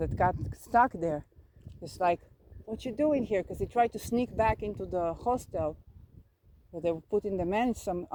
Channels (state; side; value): identical; both; correlation 1.00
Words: got stuck there is like, "What you doing here?" Because he tried to sneak back into the hostel. They were putting the men